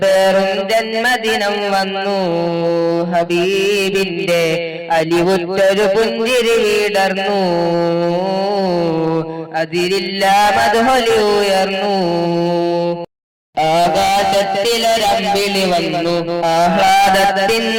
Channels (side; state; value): both; identical; correlation 1.00